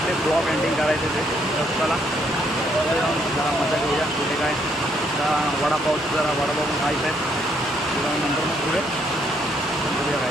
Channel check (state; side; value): normal; both; correlation 0.71